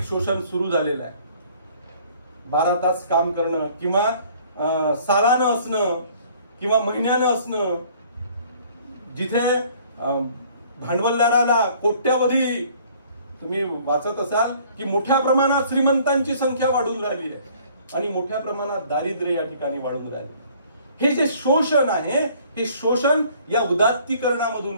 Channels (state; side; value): inverted; both; correlation -0.56